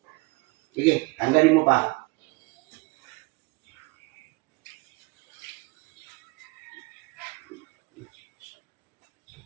Sige, tanggalin mo pa.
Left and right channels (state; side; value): quieter; left; 25.9 dB